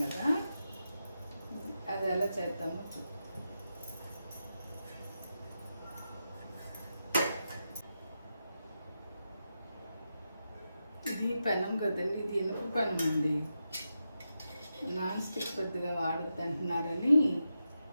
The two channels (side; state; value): both; inverted; correlation -0.88